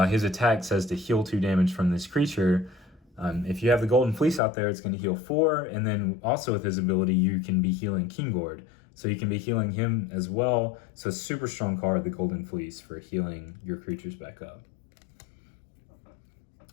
his attack says to heal 2 damage from this creature. If you have the Golden Fleece out there, it's going to heal 4, and then also with his ability, you can be healing Gord. So you can be healing him as well. So super strong card, the Golden Fleece, for healing your creatures back up.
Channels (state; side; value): drops out; right; at 4.4 s